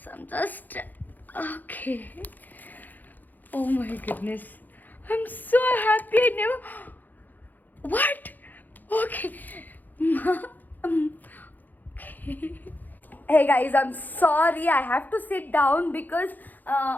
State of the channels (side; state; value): right; late; 0.085 ms